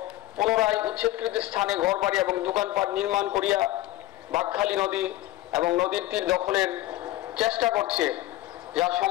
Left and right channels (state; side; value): quieter; right; 16.1 dB